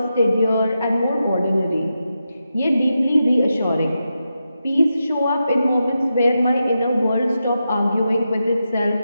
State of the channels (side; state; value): both; inverted; correlation -0.88